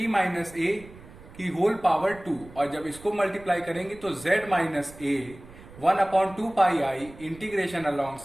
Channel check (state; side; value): noise; right; rumble, 20 dB below the sound